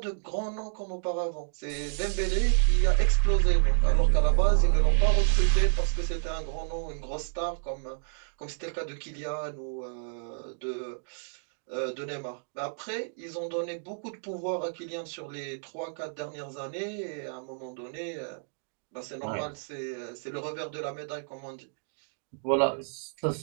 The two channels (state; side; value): silent; left; digital silence